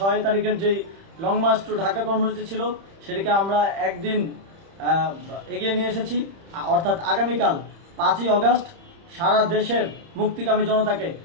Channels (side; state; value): left; late; 30 ms